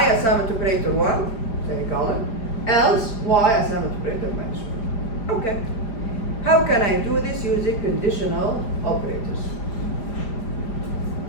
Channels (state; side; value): late; right; 5.0 ms